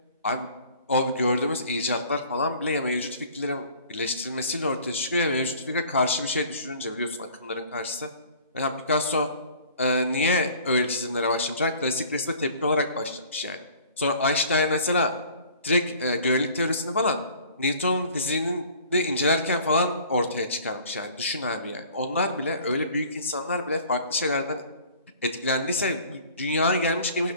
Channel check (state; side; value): inverted; both; correlation -0.50